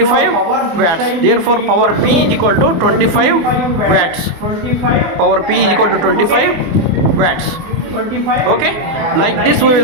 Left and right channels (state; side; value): late; left; 24 ms